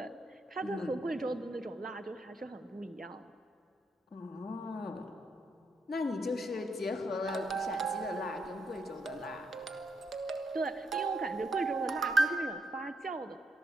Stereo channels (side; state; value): both; normal; correlation 0.78